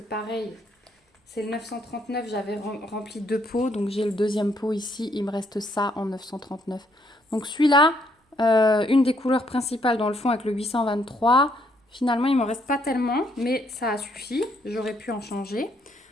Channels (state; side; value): normal; both; correlation 0.71